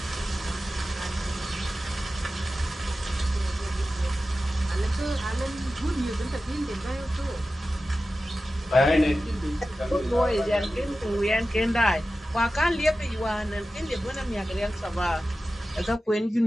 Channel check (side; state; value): both; normal; correlation 0.94